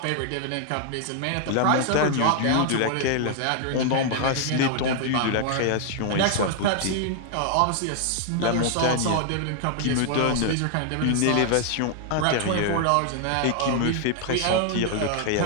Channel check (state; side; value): different; both; correlation 0.00